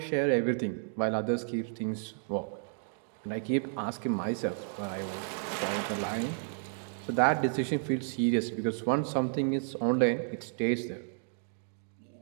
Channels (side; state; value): left; silent; digital silence